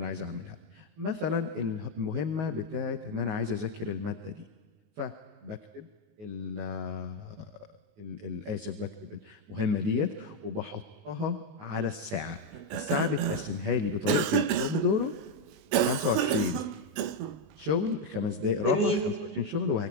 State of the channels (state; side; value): late; left; 20 ms